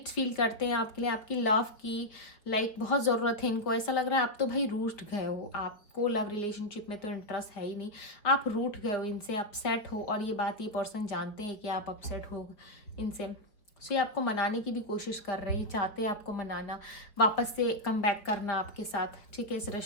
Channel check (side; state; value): right; late; 4.7 ms